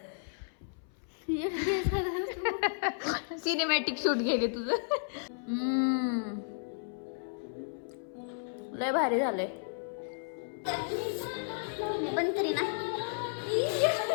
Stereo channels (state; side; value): silent; right; 56 dB below the other